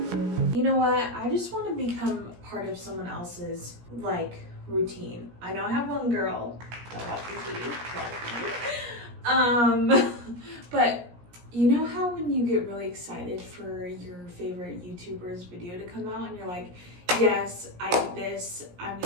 You know what? I just want to become part of someone else's, like, routine. I know I have one girl that watches TV. But you know how when you get really excited for your favorite YouTuber's video to come out and you're like, yes, I did this, I'm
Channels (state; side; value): late; left; 17 ms